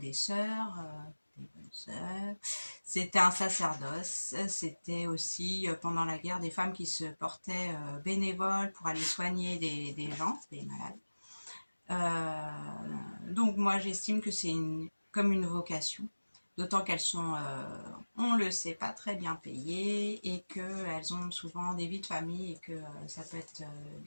sœurs, des bonnes sœurs. C'était un sacerdoce. C'était aussi pendant la guerre des femmes qui se portaient bénévoles pour aller soigner des gens, des malades. Donc moi, j'estime que c'est comme une vocation. D'autant qu'elles sont, on le sait, pas très bien payées et qu'elles ont souvent des vies de famille et que ça peut être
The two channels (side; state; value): both; inverted; correlation -1.00